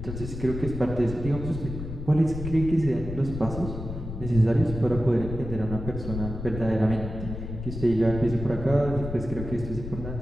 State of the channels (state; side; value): noise; left; rumble, 8 dB below the sound